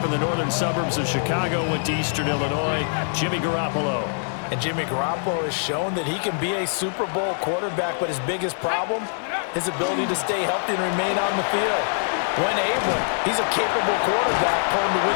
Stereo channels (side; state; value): right; silent; digital silence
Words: in the northern suburbs of Chicago, went to Eastern Illinois. Jimmy Garoppolo. And Jimmy Garoppolo has shown that he can be a Super Bowl quarterback, but his biggest problem, his ability to stay healthy and remain on the field. When able, he's a capable quarterback, prone to